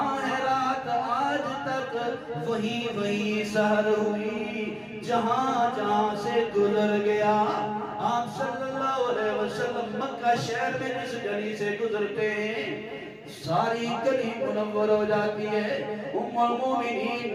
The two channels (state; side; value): identical; both; correlation 1.00